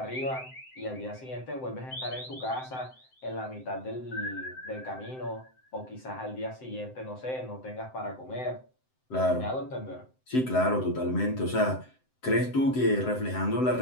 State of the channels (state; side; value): late; right; 7.8 ms